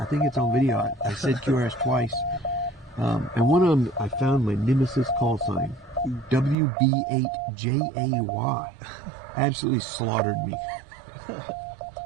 think it's on video. I said QRS twice. And one of them, I found my nemesis call sign. WB8JAY. Absolutely slaughtered me.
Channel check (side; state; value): left; drops out; at 6.6 s